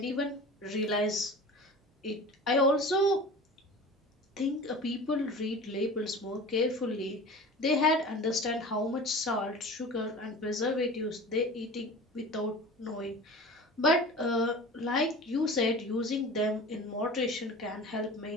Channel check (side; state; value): both; normal; correlation 0.37